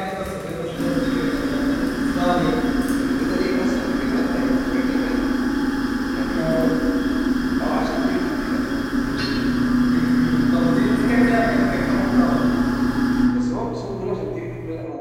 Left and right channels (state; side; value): identical; both; correlation 1.00